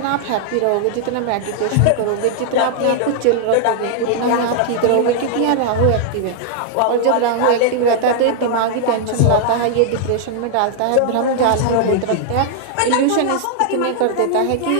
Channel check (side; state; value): both; different; correlation -0.01